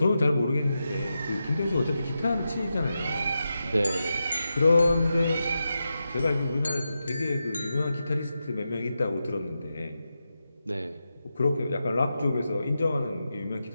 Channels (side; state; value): both; inverted; correlation -0.89